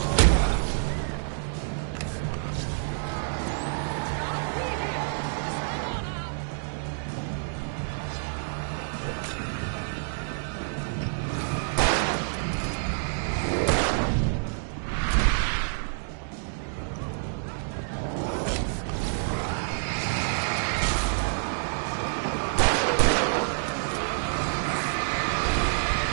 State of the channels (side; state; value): left; silent; digital silence